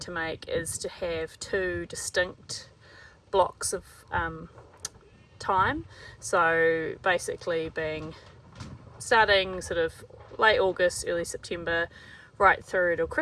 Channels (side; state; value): both; identical; correlation 1.00